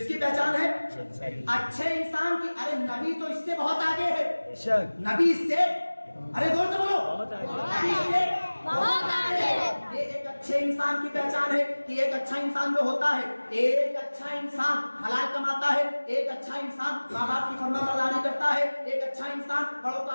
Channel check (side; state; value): both; inverted; correlation -1.00